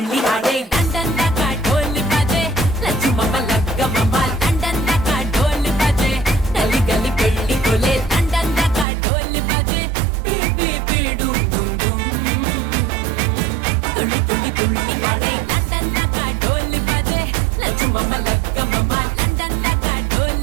ఆడే లండన్ దాకా ఢోల్ బాజే లచ్చుమమ్మ లగ్గమమ్మ లండన్ దాకా ఢోల్ బాజే గలి గలి పెళ్లి కొలే లండన్ దాకా ఢోల్ బాజే బీ బీ డూమ్ డూమ్ డూమ్ తుళ్ళి తుళ్ళి తుళ్ళి ఆడే లండన్ దాకా ఢోల్ బాజే లచ్చుమమ్మ లగ్గమమ్మ లండన్ దాకా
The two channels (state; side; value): drops out; left; at 8.8 s